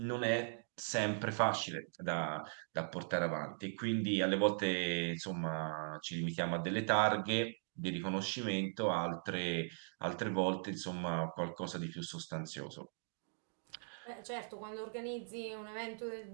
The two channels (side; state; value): left; silent; digital silence